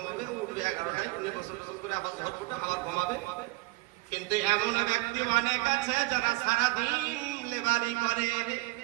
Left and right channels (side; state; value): left; quieter; 21.5 dB